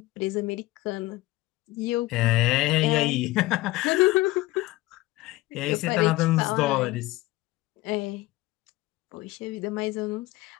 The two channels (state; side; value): quieter; right; 18.9 dB